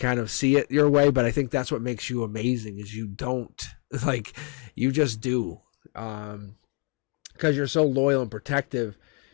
of see it your way, but I think that's what makes you amazing is you don't. Like, you just do. Because you're so loyal and protective,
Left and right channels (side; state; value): right; quieter; 29.7 dB